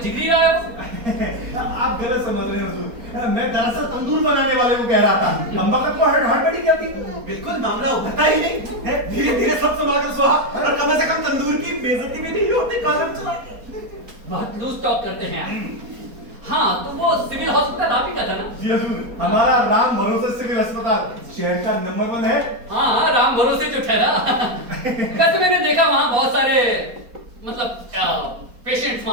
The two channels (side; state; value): left; late; 4.2 ms